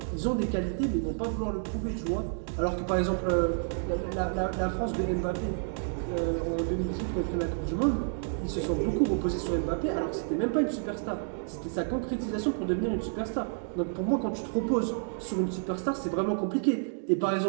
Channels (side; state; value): left; silent; digital silence